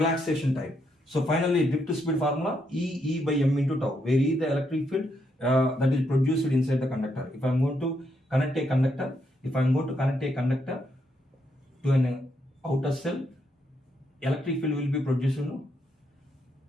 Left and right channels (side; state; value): both; normal; correlation 0.78